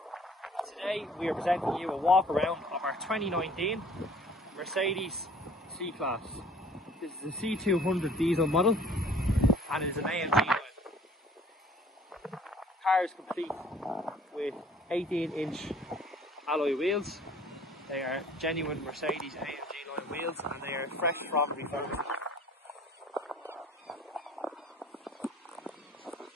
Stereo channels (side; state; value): both; normal; correlation 0.53